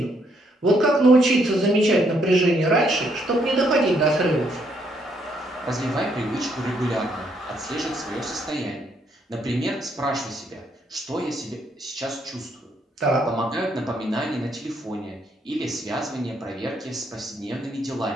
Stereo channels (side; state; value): both; normal; correlation 0.72